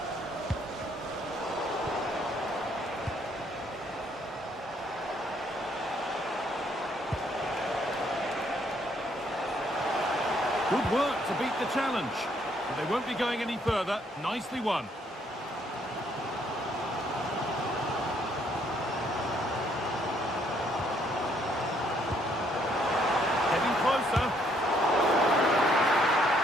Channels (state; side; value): normal; both; correlation 0.68